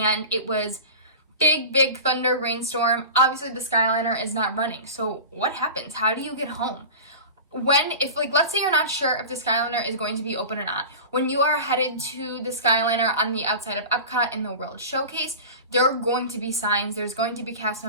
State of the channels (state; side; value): inverted; both; correlation -0.32